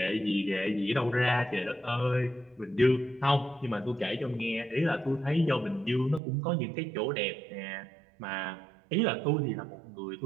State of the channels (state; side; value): drops out; left; at 6.2 s